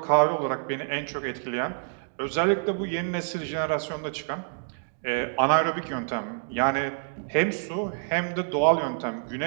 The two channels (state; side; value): silent; left; digital silence